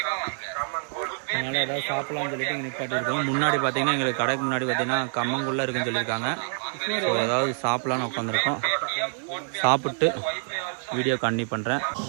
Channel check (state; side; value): silent; left; digital silence